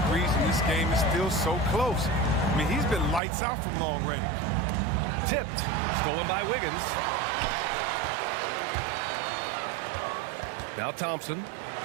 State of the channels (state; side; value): drops out; left; at 3.2 s